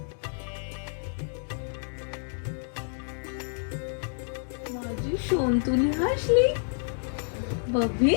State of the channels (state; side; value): silent; right; digital silence